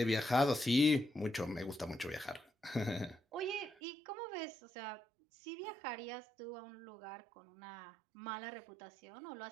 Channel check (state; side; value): drops out; left; at 3.8 s